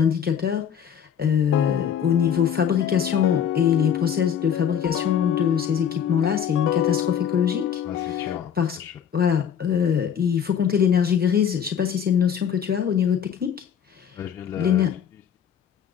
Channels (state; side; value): quieter; right; 8.4 dB